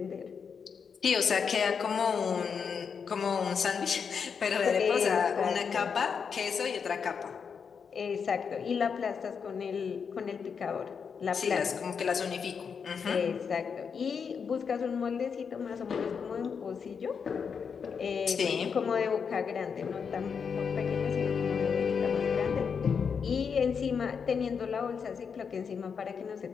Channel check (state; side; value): quieter; right; 6.3 dB